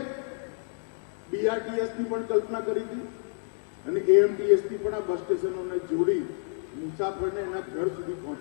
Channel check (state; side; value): silent; right; digital silence